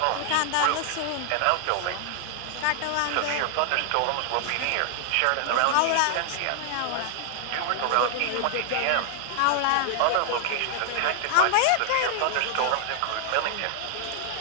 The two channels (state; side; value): different; both; correlation 0.00